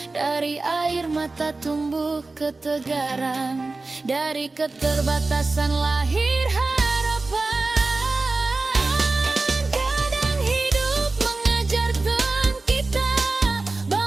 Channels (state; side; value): quieter; left; 3.5 dB